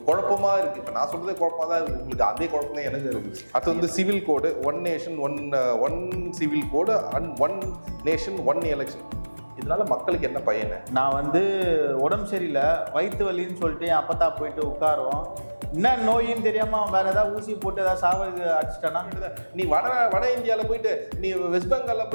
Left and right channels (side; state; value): both; inverted; correlation -1.00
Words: குழப்பமா இருக்கு. இப்போ நான் சொல்றதே குழப்பமா தான் இருக்கு, உங்களுக்கு அதே குழப்பம் தான் எனக்கு இருக்குது. அது வந்து civil code, one nation one civil code and one nation one election. இதனால மக்களுக்கு என்ன பயன்? நான் வந்து உடம்பு சரியில்லை, வயிற்று வலின்னு சொல்லிட்டு என் அப்பத்தா போயிட்டு உட்காரோம், என்ன நோயின்னு தெரியாம வேற ஏதாவது ஊசி போட்டு ஏதாவது சாவது அடிச்சிட்டானா? நீ வட இந்தியாவில் போயிட்டு, நீ வெஸ்ட் பெங்கால்ல